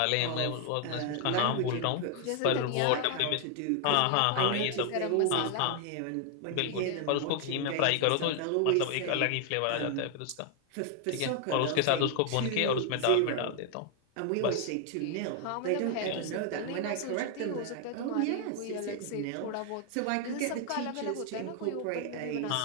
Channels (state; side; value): different; both; correlation 0.00